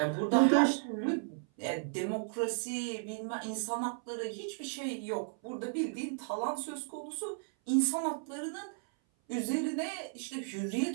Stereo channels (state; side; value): silent; left; 55 dB below the other